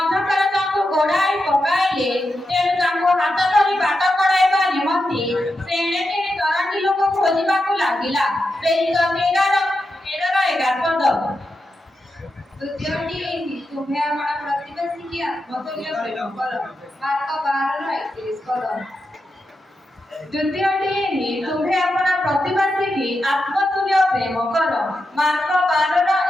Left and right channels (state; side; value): normal; both; correlation 0.88